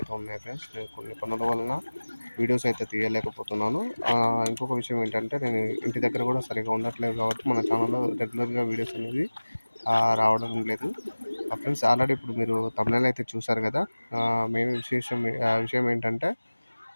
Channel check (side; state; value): both; inverted; correlation -1.00